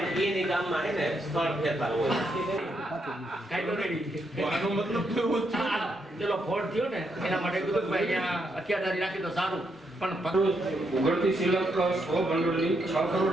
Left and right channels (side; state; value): both; normal; correlation 0.78